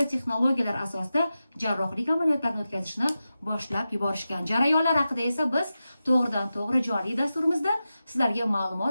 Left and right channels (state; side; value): inverted; both; correlation -0.92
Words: texnologiyalar asosida jarrohlik amaliyotlarini o'tkazishni boshlab yuborishgan. Jarayonlar haqida esa biz to'g'ridan-to'g'ri joriy dasturimizda sizlarga